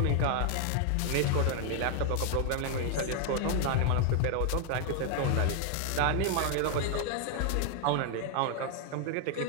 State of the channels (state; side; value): different; both; correlation 0.00